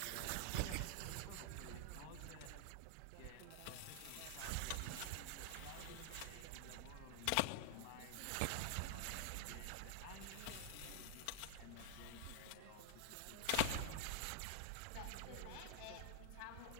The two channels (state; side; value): different; both; correlation 0.00